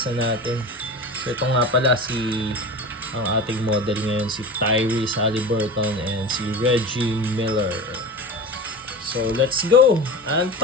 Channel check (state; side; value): normal; both; correlation 0.30